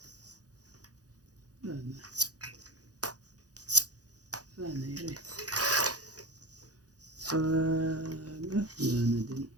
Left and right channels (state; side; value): late; left; 0.67 ms